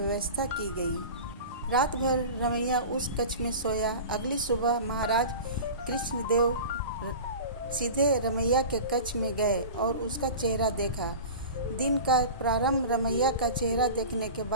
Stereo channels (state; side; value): inverted; both; correlation -0.34